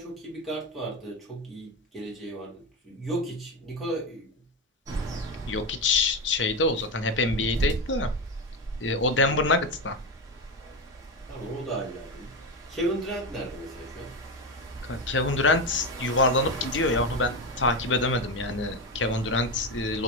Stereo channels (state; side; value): normal; both; correlation 0.16